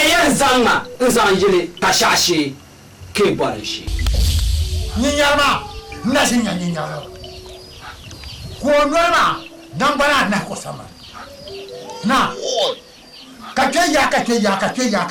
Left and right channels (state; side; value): identical; both; correlation 1.00